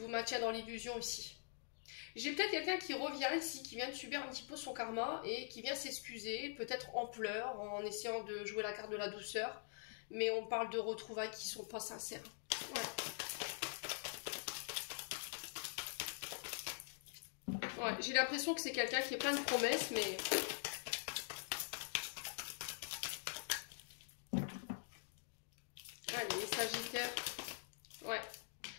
maintient dans l'illusion ici. J'ai peut-être quelqu'un qui revient ici, qui vient de subir un petit peu son karma et qui vient s'excuser, peut-être en pleurs, en essayant de jouer la carte de la douceur. Mais on parle de retrouvailles qui sont pas sincères. Ouais, j'ai l'impression que c'est quelqu'un qui est plein de promesses, mais... Allez, les sagittaires. Ouais.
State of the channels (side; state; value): right; silent; digital silence